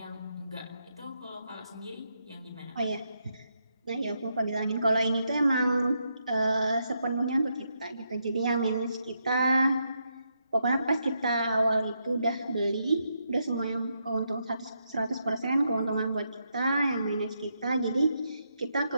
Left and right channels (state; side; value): inverted; both; correlation -0.81